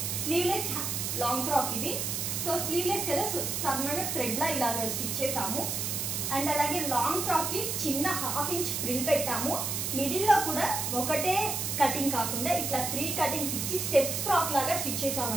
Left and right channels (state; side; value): noise; right; hiss, 1 dB below the sound